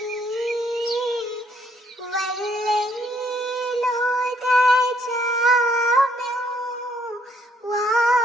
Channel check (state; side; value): normal; both; correlation 0.68